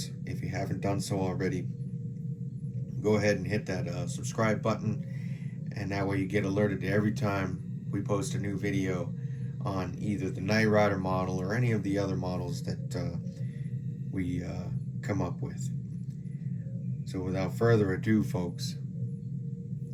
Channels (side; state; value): both; identical; correlation 1.00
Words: if you haven't done so already, go ahead and hit that subscribe button, and that way you get alerted to every time we post a new video on either the Knight Rider model or any of the other models that we come up with. So without further ado, folks,